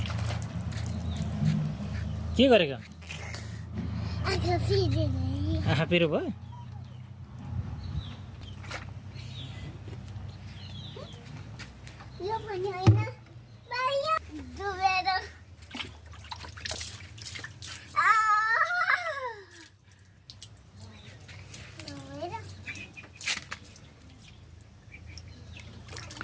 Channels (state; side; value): identical; both; correlation 1.00